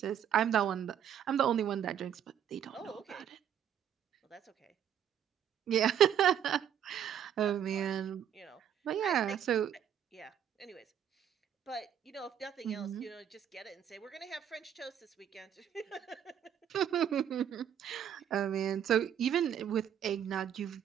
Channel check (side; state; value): left; quieter; 9.3 dB